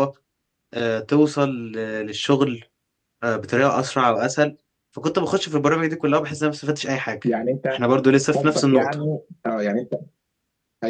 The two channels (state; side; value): identical; both; correlation 1.00